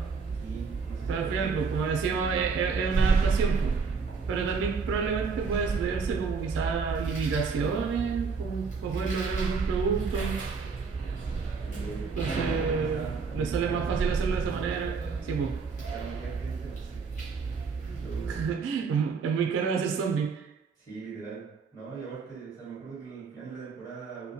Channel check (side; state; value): left; quieter; 5.1 dB